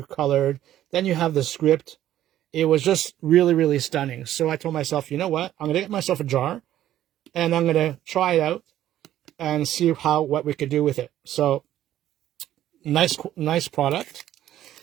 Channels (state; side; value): quieter; left; 12.5 dB